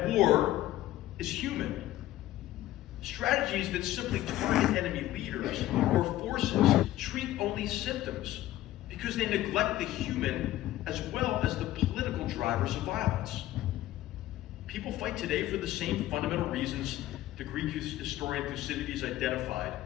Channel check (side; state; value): right; quieter; 14.8 dB